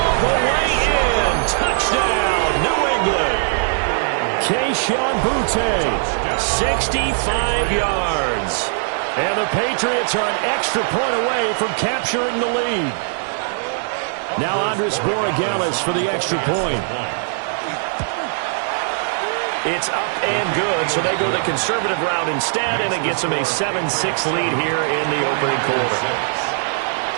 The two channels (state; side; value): silent; left; digital silence